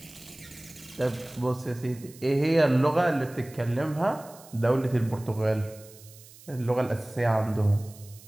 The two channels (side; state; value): right; noise; hiss, 21 dB below the sound